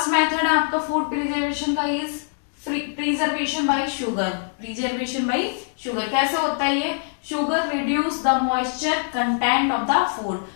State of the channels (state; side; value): silent; right; digital silence